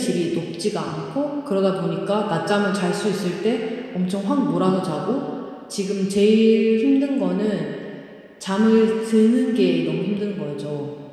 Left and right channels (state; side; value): identical; both; correlation 1.00